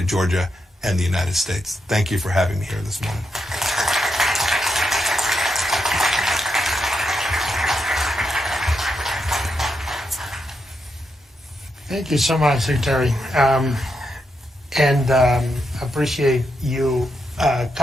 Georgia and the United States. Thank you for having me here this morning. Thank you so much, Secretary. And appreciate you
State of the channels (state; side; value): normal; both; correlation 0.83